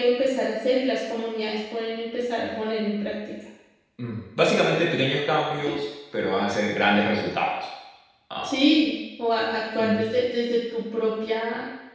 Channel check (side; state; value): both; identical; correlation 1.00